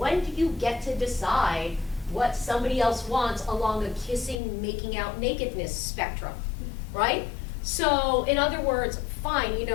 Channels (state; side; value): drops out; right; at 4.4 s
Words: do you get to decide what somebody else wants along a kissing, making out, nakedness spectrum, right? So, in other words, fine, you